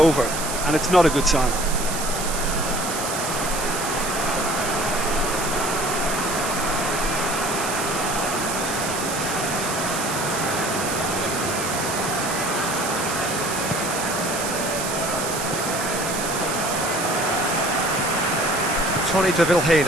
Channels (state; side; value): noise; right; hiss, 5 dB below the sound